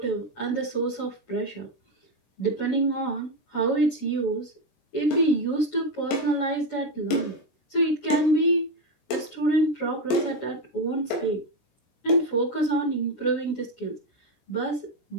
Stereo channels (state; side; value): late; right; 16 ms